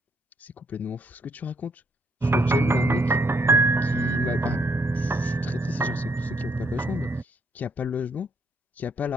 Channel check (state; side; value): normal; both; correlation 0.72